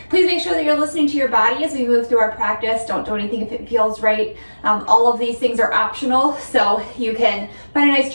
Please make sure that you're listening to your body as we move through our practice. Don't do anything if it feels right. All of these things are optional, so you can find a nice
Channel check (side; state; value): both; inverted; correlation -1.00